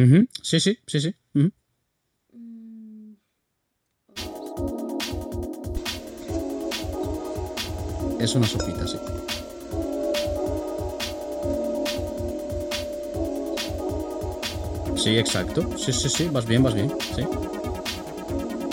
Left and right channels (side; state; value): both; identical; correlation 1.00